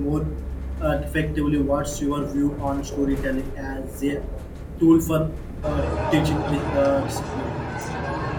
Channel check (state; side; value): identical; both; correlation 1.00